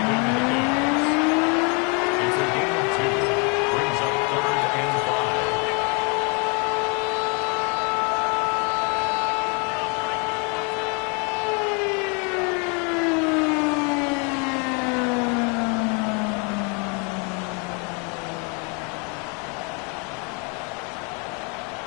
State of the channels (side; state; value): right; quieter; 34.8 dB